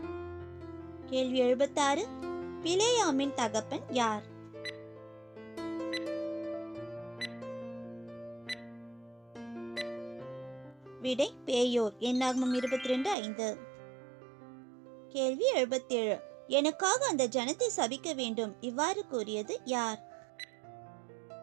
கேள்வி 76. பிலேயாமின் தகப்பன் யார்? விடை பேயோர். என்னாகமம் 22:5. கேள்வி 77. எனக்காக அந்த ஜனத்தை சபிக்க வேண்டும் இவ்வாறு கூறியது யார்?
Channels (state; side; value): drops out; left; at 13.2 s